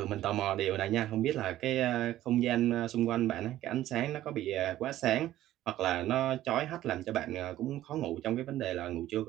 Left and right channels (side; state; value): left; quieter; 13.9 dB